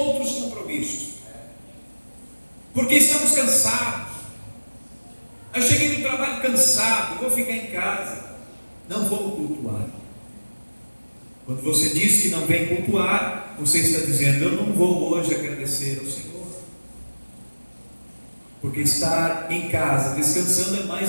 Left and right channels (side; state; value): both; inverted; correlation -1.00